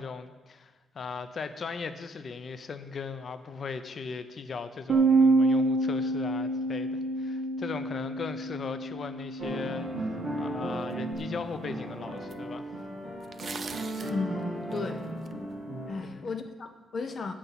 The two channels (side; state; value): both; normal; correlation 0.66